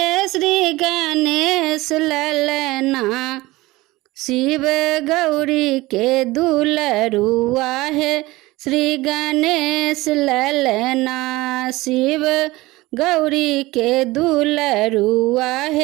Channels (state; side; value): quieter; left; 19.9 dB